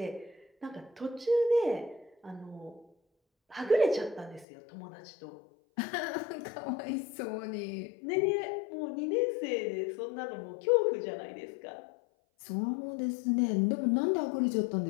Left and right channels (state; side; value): drops out; right; at 4.5 s